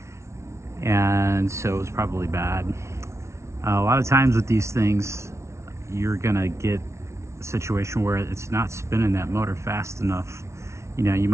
and so it was probably bad. A lot of times with these things, you're gonna get a situation where it's not spinning that motor fast enough. You know, you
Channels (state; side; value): late; left; 0.13 ms